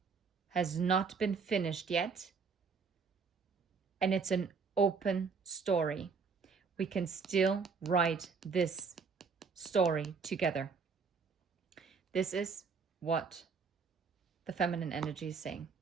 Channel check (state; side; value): quieter; left; 5.3 dB